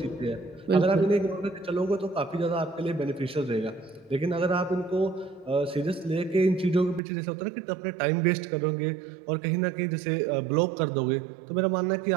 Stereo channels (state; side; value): drops out; left; at 7.0 s